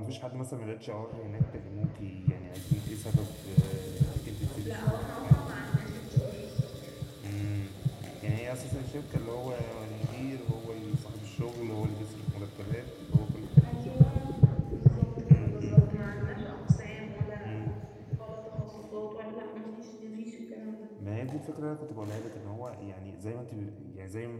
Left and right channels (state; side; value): identical; both; correlation 1.00